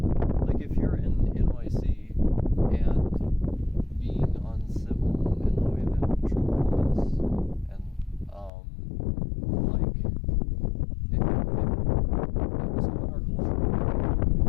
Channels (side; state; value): right; drops out; at 8.5 s